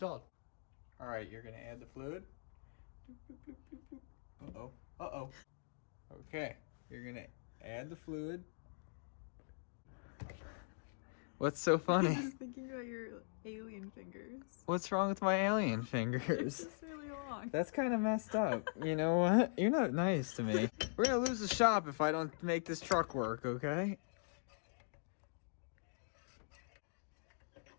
All right, you're gonna add the fluid. Uh-oh, uh-oh. Okay, you're gonna add the fluid. What's so funny? I'm just thinking about your alien fingers. What's wrong with my alien fingers? It's just really long. That's kind of messed up. You know what? You're not nice to me. We're gonna lose the shop if I don't make this truck work, okay?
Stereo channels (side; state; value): right; silent; digital silence